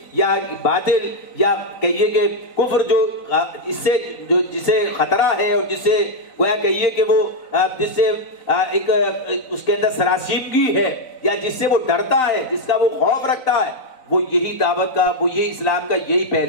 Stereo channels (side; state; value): right; late; 3.9 ms